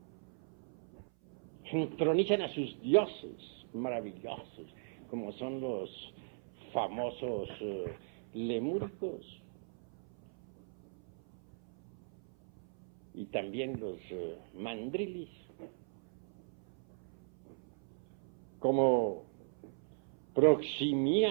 Entronizan a sus dioses maravillosos, como son los famosos lemúricos, y también los mandrilis, como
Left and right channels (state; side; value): silent; left; 52 dB below the other